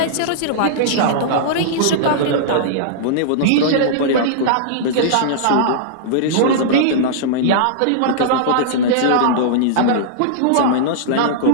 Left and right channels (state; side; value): different; both; correlation -0.02